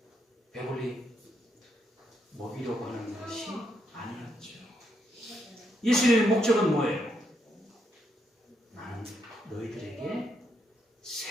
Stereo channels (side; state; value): both; normal; correlation 0.78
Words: 배불리 먹이려고 하는 것이 아니었죠. 예수님의 목적은 뭐예요? 나는 너희들에게